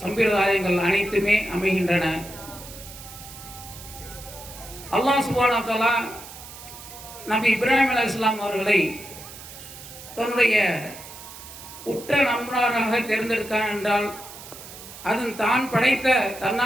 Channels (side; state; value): right; noise; hiss, 15 dB below the sound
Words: சம்பிரதாயங்கள் அனைத்துமே அமைகின்றன. அல்லாஹ் சுப்ஹானஹு வ தஆலா நபி இப்ராஹிம் அலைஹிஸ்ஸலாம் அவர்களை தன்னுடைய உற்ற நண்பராக தேர்ந்தெடுத்தான் என்றால், அதன் தான் படைத்த